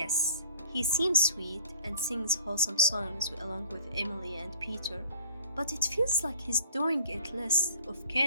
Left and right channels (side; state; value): both; inverted; correlation -0.53